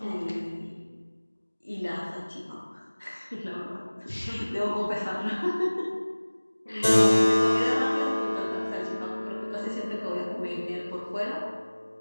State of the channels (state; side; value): inverted; both; correlation -1.00